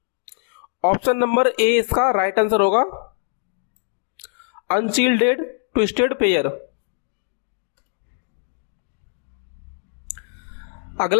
Option number A इसका राइट आंसर होगा, अनशील्डेड ट्विस्टेड पेयर।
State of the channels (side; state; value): right; silent; digital silence